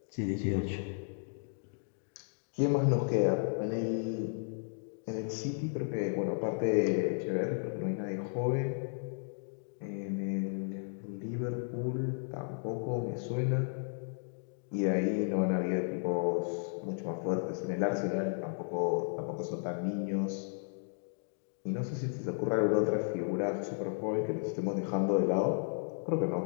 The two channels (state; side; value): silent; right; digital silence